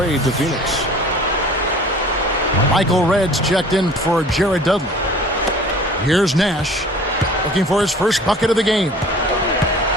to Phoenix. Michael Reds checked in for Jared Dudley. Here's Nash looking for his first bucket of the game.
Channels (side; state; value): both; normal; correlation 0.46